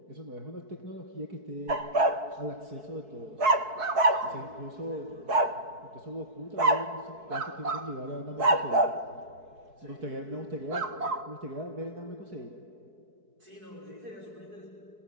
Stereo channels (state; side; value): late; left; 4.6 ms